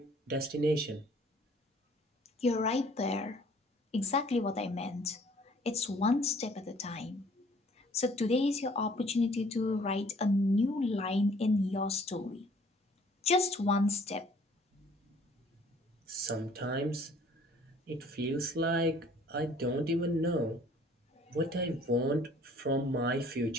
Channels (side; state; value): both; normal; correlation 0.56